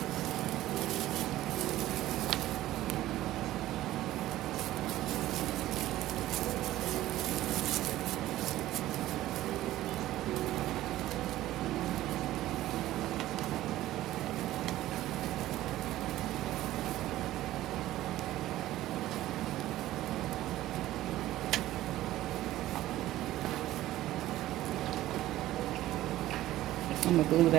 I'm gonna glue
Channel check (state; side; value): quieter; left; 15.0 dB